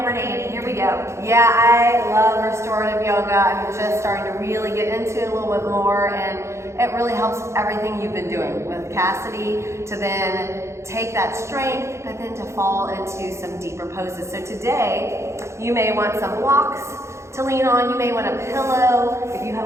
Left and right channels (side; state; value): left; late; 0.14 ms